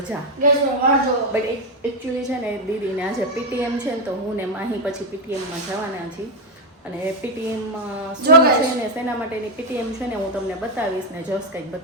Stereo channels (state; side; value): normal; both; correlation 0.04